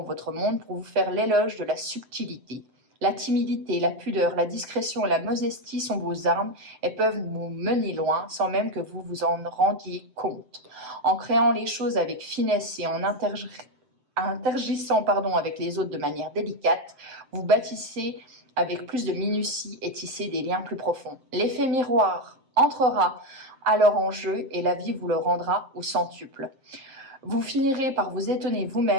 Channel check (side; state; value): left; late; 7.7 ms